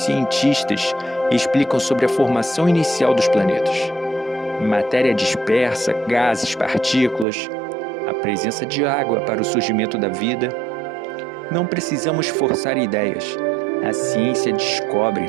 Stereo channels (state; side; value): drops out; left; at 7.2 s